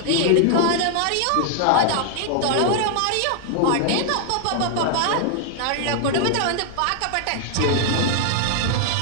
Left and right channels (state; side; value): different; both; correlation 0.00